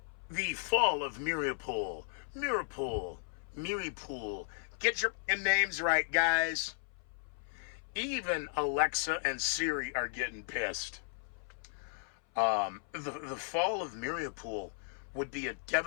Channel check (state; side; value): silent; right; 54 dB below the other